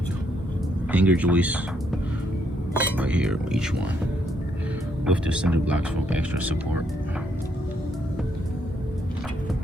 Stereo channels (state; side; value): normal; both; correlation 0.74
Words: Hanger joists right here, each one, with the cinder blocks for extra support.